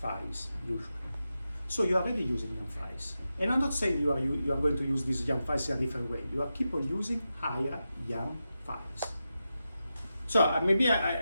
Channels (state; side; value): inverted; both; correlation -0.90